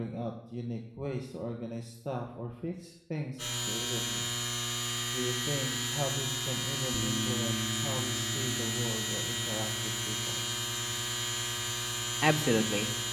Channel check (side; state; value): both; identical; correlation 1.00